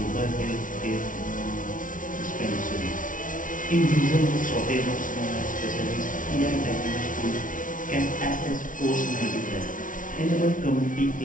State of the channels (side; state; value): right; late; 0.38 ms